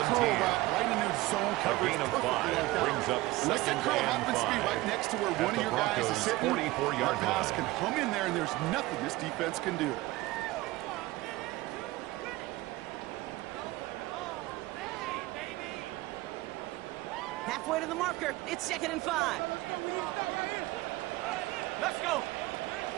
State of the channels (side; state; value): left; quieter; 19.1 dB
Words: curl route right into zone coverage. A gain of 5 brings up unless that curl happens to be right next to where one of your guys is sitting, that pass can hum in there, and there's nothing this defense can do. Halfway to the marker. It's 2nd and 5. Let's go.